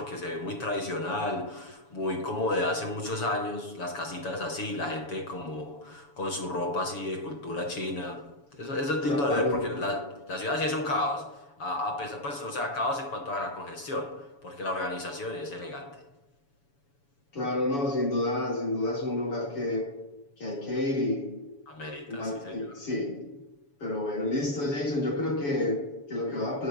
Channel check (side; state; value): right; late; 7.1 ms